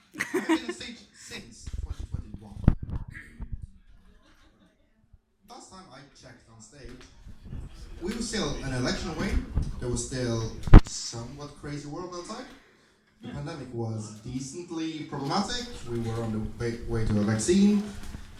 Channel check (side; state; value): both; identical; correlation 1.00